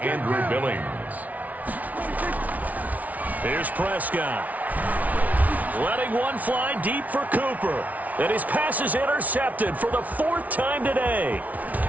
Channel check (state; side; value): late; left; 0.072 ms